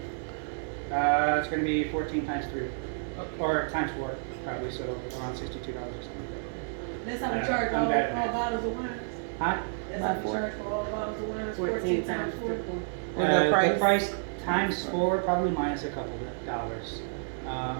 It's going to be 14 times 3, or times 4, probably, so around $62 or something like That's how we charge I'm all bad at math. bottles of wine. that. Huh? That's how we charge for all bottles of wine. 14 times 4. With the price? times 4, probably minus a couple of dollars.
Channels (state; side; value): silent; left; digital silence